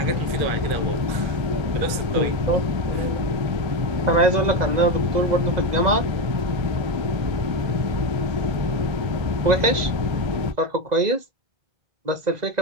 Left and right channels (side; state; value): left; late; 2.0 ms